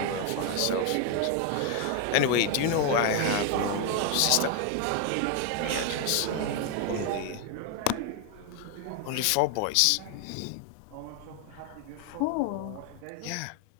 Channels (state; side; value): different; both; correlation 0.01